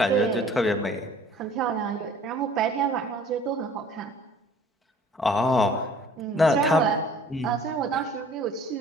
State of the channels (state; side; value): normal; both; correlation 0.52